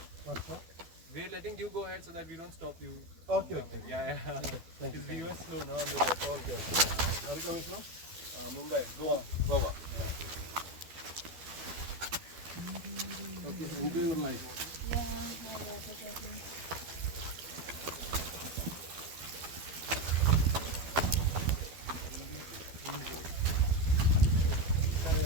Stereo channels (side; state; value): left; late; 12 ms